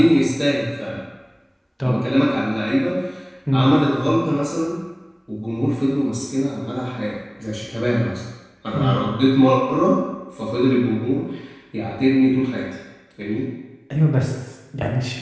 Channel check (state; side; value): identical; both; correlation 1.00